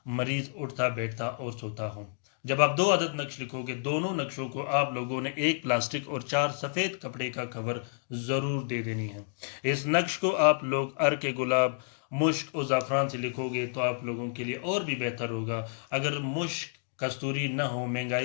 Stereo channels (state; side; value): silent; right; digital silence